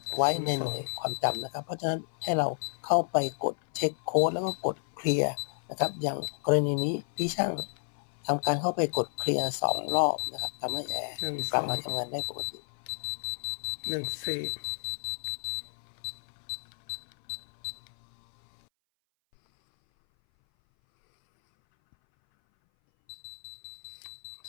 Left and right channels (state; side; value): silent; right; 57 dB below the other